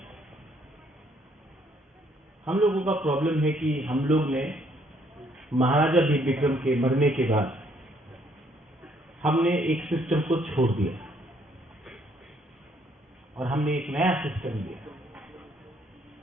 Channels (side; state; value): both; normal; correlation 0.67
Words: हम लोगों का प्रॉब्लम है कि हम लोग ने महाराजा वीर विक्रम के मरने के बाद हमने एक सिस्टम को छोड़ दिया और हमने एक नया सिस्टम दिया।